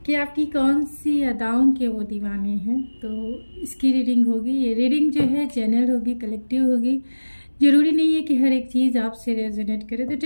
कि आपकी कौन सी अदाओं के वो दीवाने हैं। तो इसकी रीडिंग होगी। ये रीडिंग जो है जनरल होगी, कलेक्टिव होगी। जरूरी नहीं है कि हर एक चीज़ आपसे रेजोनेट करे, तो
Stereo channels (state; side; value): inverted; both; correlation -1.00